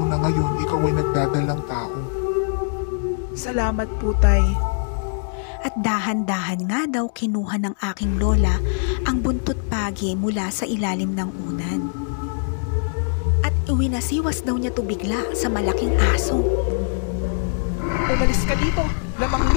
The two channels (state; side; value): silent; right; digital silence